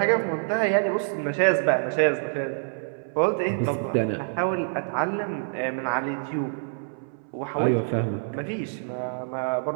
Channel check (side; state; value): left; silent; 59 dB below the other